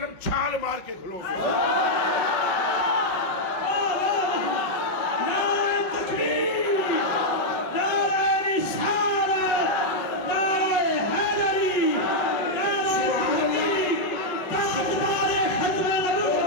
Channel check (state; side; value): late; right; 5.1 ms